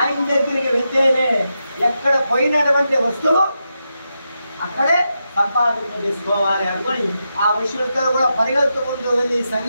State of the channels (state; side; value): inverted; both; correlation -0.87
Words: దగ్గరికి వెళ్తేనే ఎక్కడ పోయినటువంటి వస్తువు అక్కడే సంపాదింప చేసుకోవాలి అనుకొని ఆ విషయంతో కూడా పరిగెత్తుకుంటూ వెళ్ళి